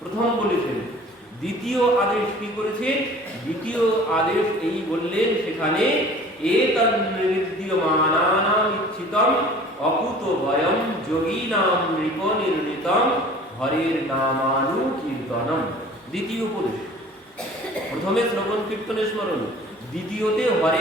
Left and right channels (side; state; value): both; normal; correlation 0.46